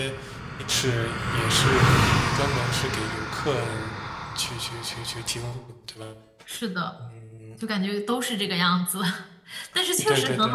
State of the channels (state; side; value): identical; both; correlation 1.00